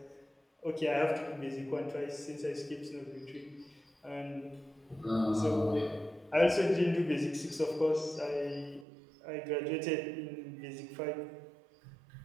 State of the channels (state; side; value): drops out; left; at 8.8 s